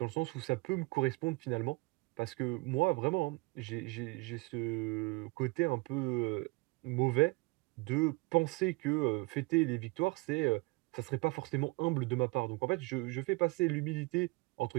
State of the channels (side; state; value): left; quieter; 25.4 dB